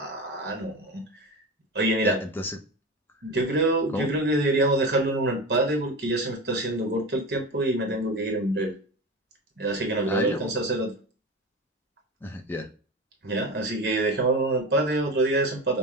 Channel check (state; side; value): normal; both; correlation 0.26